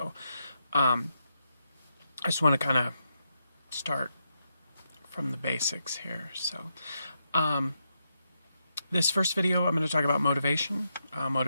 I just want to kind of start from the basics here. So this first video, I'm going to talk about motivation.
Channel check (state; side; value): inverted; both; correlation -0.83